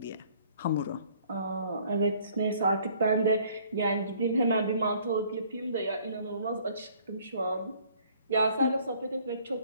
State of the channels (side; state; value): both; inverted; correlation -0.58